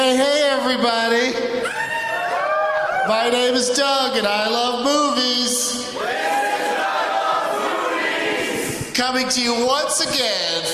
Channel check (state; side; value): identical; both; correlation 1.00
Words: hey, everybody. My name is Doug, and I love movies. Coming to you once again